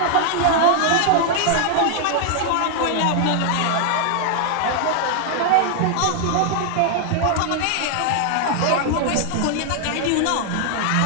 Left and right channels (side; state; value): both; different; correlation 0.00